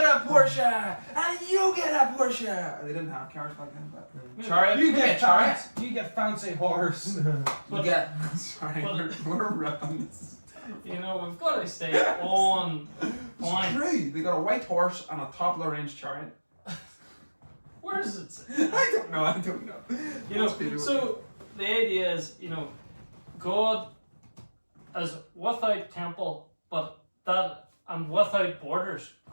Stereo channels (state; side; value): inverted; both; correlation -1.00